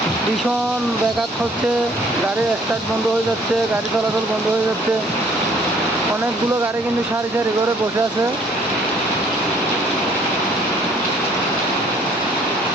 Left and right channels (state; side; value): normal; both; correlation 0.59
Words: ভীষণ ব্যাঘাত হচ্ছে, গাড়ির স্টার্ট বন্ধ হয়ে যাচ্ছে, গাড়ি চলাচল বন্ধ হয়ে যাচ্ছে। অনেকগুলো গাড়ি কিন্তু সারি সারি করে বসে আছে।